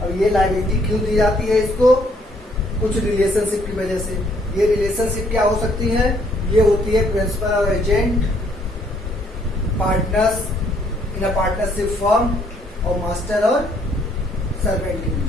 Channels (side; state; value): both; normal; correlation 0.66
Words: अब ये लायबिलिटी क्यों दी जाती है इसको, कुछ रिलेशनशिप की वजह से. ये रिलेशनशिप क्या हो सकती है? ये होती है प्रिंसिपल और agent, partners in a partnership firm, और मास्टर और सर्वेंट के